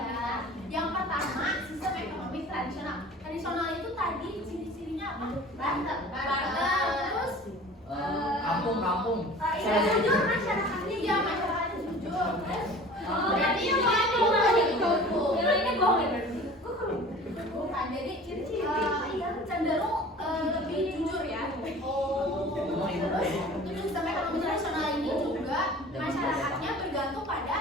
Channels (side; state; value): both; normal; correlation 0.43